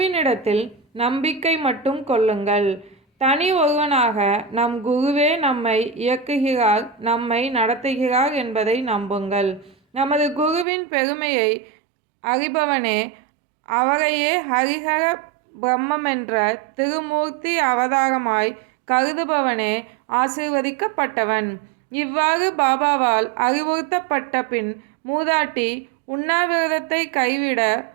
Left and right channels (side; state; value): left; drops out; at 10.7 s